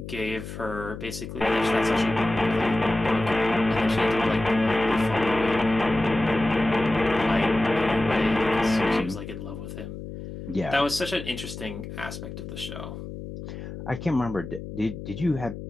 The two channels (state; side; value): noise; left; hum, 10 dB below the sound